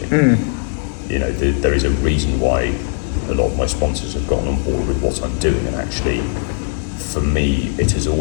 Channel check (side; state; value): right; silent; digital silence